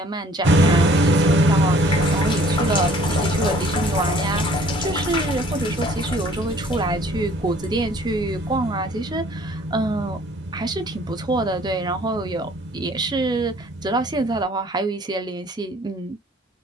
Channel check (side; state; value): both; normal; correlation 0.56